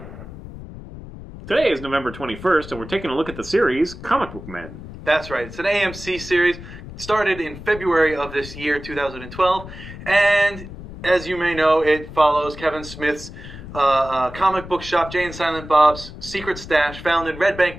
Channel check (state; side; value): noise; left; rumble, 13 dB below the sound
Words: Today is November 21st, and we're taking a look at the series Comic Book Men. That's right. It's an AMC series. Started in February of this year, 2012. And as you may know, it follows Kevin Smith's comic book shop, Jay and Silent Bob's Secret Stash, found in Red Bank,